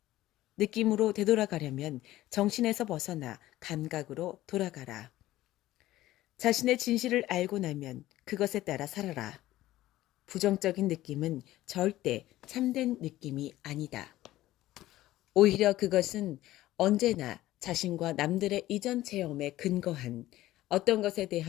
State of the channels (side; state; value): right; quieter; 15.5 dB